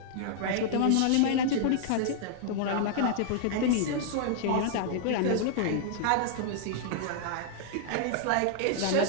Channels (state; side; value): different; both; correlation -0.01